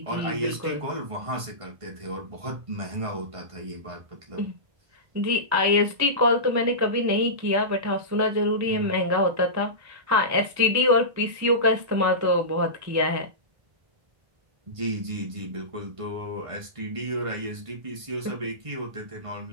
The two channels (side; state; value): left; late; 1.5 ms